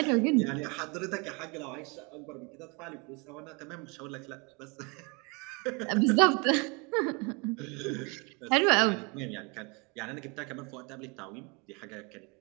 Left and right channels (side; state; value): left; quieter; 31.0 dB